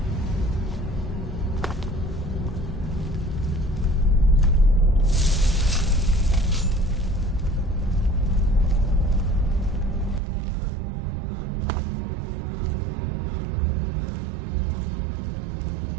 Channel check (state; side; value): drops out; left; at 10.2 s